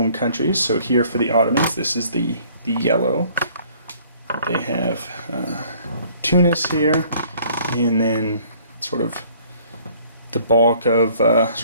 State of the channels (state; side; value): inverted; both; correlation -0.57